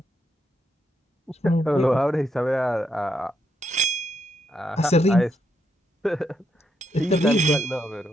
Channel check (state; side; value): normal; both; correlation 0.79